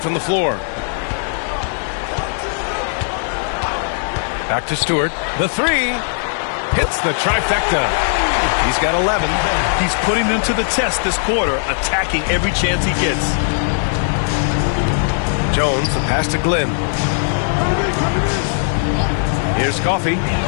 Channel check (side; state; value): right; silent; digital silence